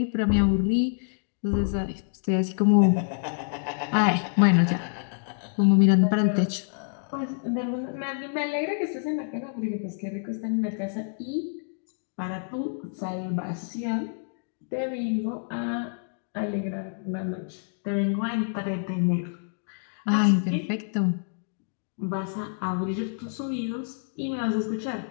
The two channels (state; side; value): silent; right; digital silence